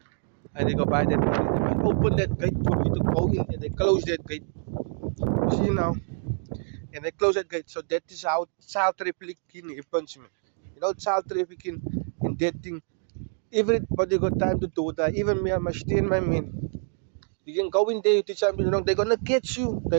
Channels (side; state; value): left; silent; 61 dB below the other